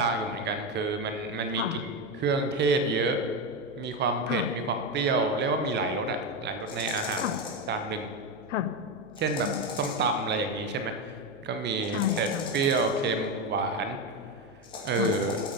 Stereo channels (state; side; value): noise; right; hum, 29 dB below the sound